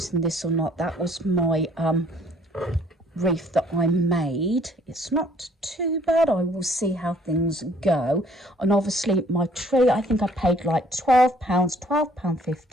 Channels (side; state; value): both; normal; correlation 0.60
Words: this or not. That was my wreath that I made. It's not too bad. I will see how things go. And obviously my tree, I think I paid like